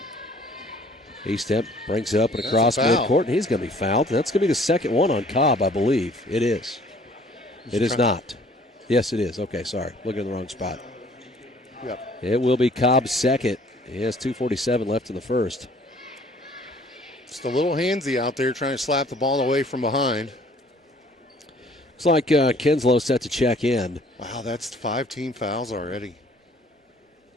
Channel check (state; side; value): normal; both; correlation 0.56